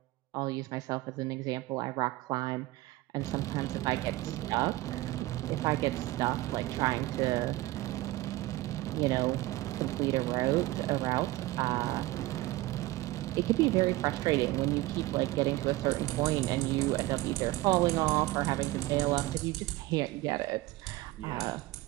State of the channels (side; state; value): left; quieter; 18.3 dB